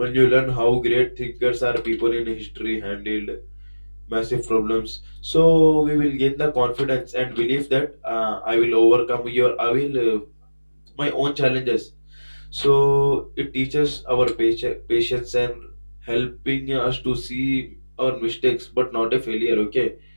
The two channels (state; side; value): inverted; both; correlation -1.00